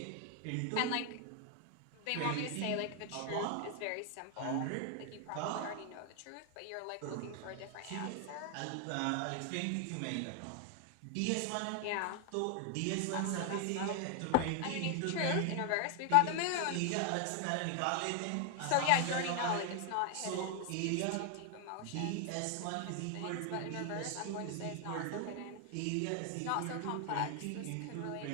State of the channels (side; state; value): both; different; correlation 0.00